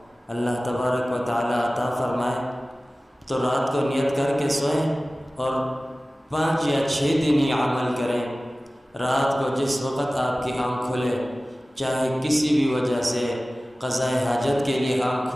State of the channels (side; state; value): both; normal; correlation 0.97